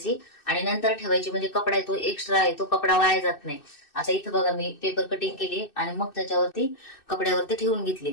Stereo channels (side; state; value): right; late; 2.6 ms